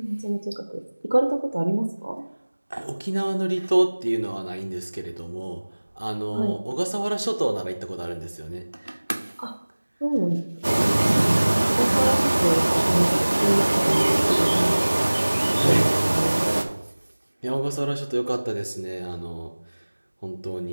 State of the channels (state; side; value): inverted; both; correlation -1.00